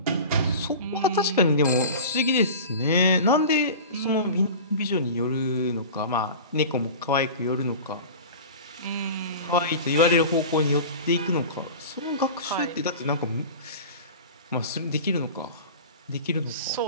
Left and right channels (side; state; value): both; inverted; correlation -0.35